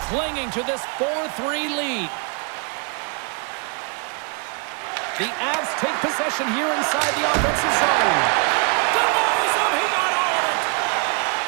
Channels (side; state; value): left; quieter; 37.6 dB